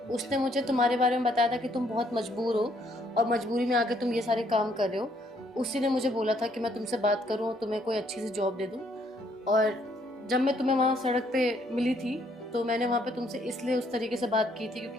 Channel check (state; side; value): normal; both; correlation 0.68